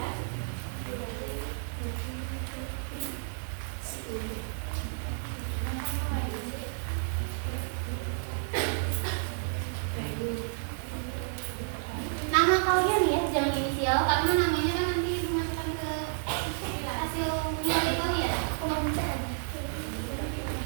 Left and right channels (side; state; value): left; silent; 57 dB below the other